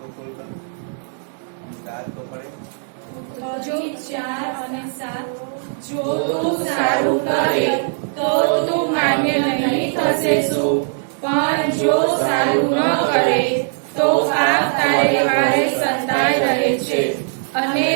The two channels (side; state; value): left; silent; 59 dB below the other